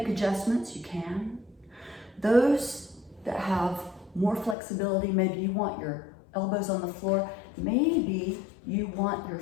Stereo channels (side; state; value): right; drops out; at 4.5 s